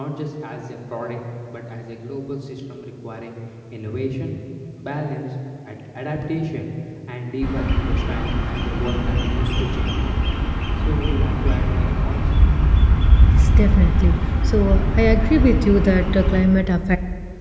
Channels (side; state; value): both; identical; correlation 1.00